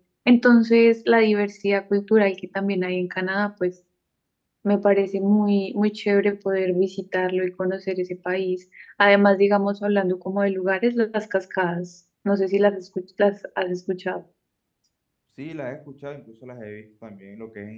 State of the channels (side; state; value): both; identical; correlation 1.00